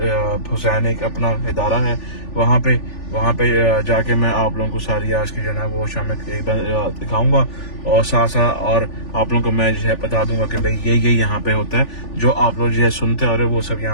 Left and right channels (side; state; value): right; late; 3.4 ms